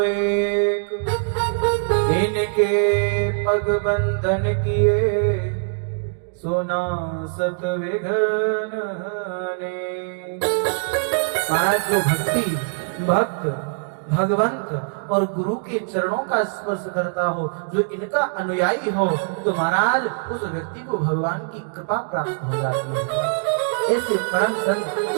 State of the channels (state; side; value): silent; left; digital silence